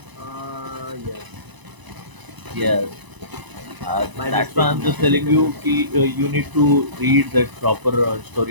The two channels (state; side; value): late; left; 1.0 ms